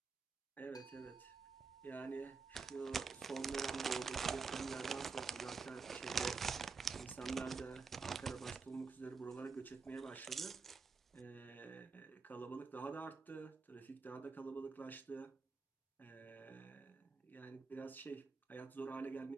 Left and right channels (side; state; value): left; quieter; 4.7 dB